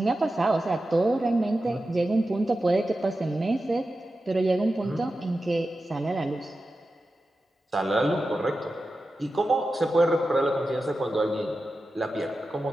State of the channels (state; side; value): normal; both; correlation 0.92